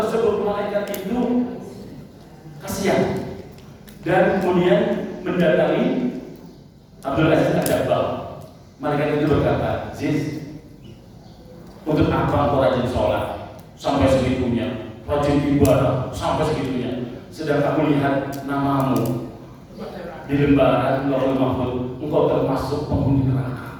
malaikat itu kasihan dan kemudian mendatangi Abdul Aziz Ad-Dabbagh. Malaikat itu berkata, Aziz, untuk apa engkau rajin sholat sampai segitunya, rajin ibadah sampai segitunya, sedang aku lihat namamu di lembaran Lauhul Mahfuz, engkau termasuk penghuni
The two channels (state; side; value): identical; both; correlation 1.00